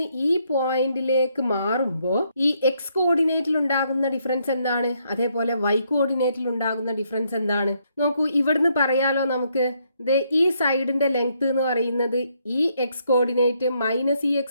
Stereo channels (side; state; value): both; inverted; correlation -0.73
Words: ഈ പോയിന്റിലേക്ക് മാറുമ്പോൾ ഈ എക്സ് കോർഡിനേറ്റിൽ ഉണ്ടാകുന്ന ഡിഫറൻസ് എന്താണ്, അതേപോലെ വൈ കോർഡിനേറ്റിൽ ഉണ്ടാകുന്ന ഡിഫറൻസ് എന്താണ് നോക്കൂ. ഇവിടുന്ന് പറയാലോ നമുക്ക്, ഈ സൈഡിന്റെ ലെങ്ത് എന്ന് പറയുന്നത് ഈ എക്സ് കോർഡിനേറ്റ് മൈനസ് ഈ